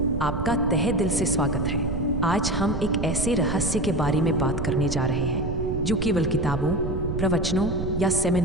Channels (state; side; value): noise; right; rumble, 4 dB below the sound